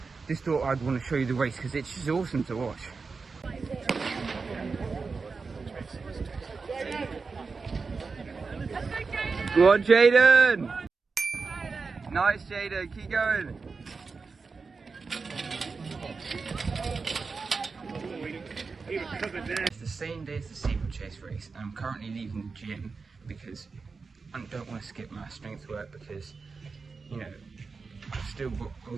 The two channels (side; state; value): left; quieter; 4.6 dB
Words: just thought I'd want to show you the race because it's just awesome to watch. Go on, Jaden! Nice, Jaden, keep going. It's the same day as the steeplechase race, and I'm currently leaving the gym because I don't want to skip my strength work, because, you know, I've still got,